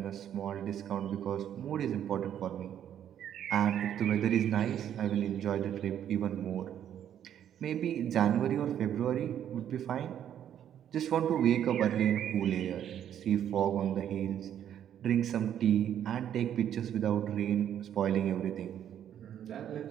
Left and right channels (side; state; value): left; quieter; 10.0 dB